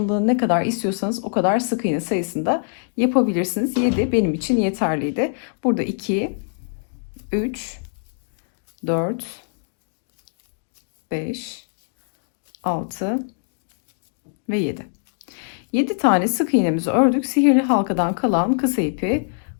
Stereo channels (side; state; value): right; silent; digital silence